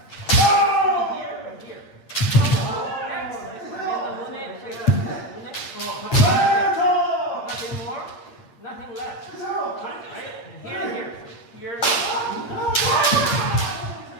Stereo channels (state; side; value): late; right; 8.6 ms